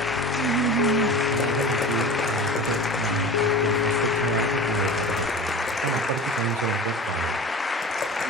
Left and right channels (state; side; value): normal; both; correlation 0.35